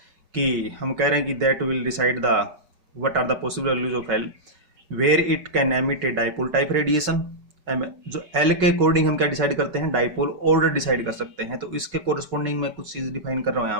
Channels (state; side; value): late; left; 5.4 ms